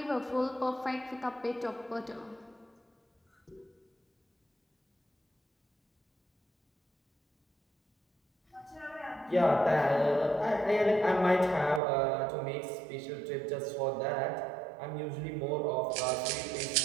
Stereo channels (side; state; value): left; drops out; at 11.8 s